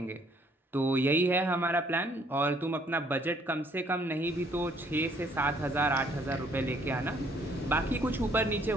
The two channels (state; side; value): normal; both; correlation 0.63